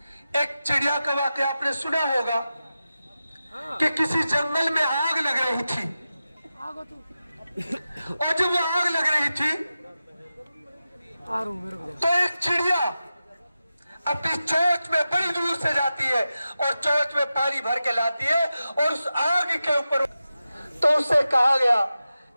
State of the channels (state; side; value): inverted; both; correlation -0.92